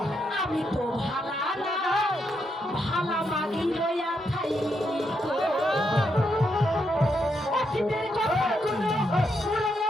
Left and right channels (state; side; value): normal; both; correlation 0.80